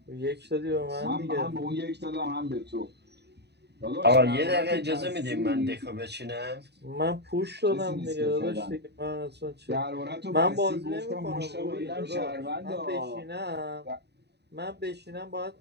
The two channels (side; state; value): left; late; 0.49 ms